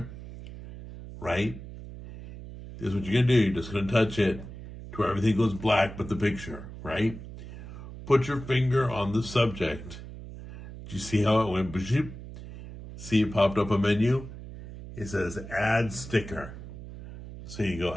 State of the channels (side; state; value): right; noise; hum, 13 dB below the sound